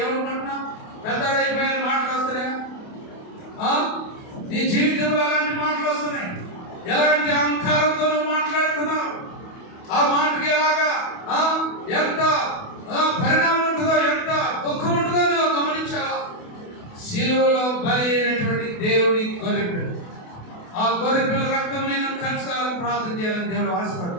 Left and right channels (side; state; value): right; late; 28 ms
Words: ఏమనుకుంటున్నావు? పెద్దడైపోయిన మాటలు వస్తున్నాయా? నీ జీవితంలో అలాంటి మాటలు వస్తున్నాయి. ఎలాంటి అహంకారంతో మాట్లాడుతున్నావు? ఆ మాటకి ఎలాగా ఎంత పరిణామం ఉంటుందో, ఎంత దుఃఖం ఉంటుందో నువ్వు గమనించావా? శిలువలో బలి అయినటువంటి దేవుడి గొర్రెపిల్ల, ఆ గొర్రెపిల్ల రక్తం నేను కలుసుకోవాలని ప్రార్థన చేయాలని దేవుడు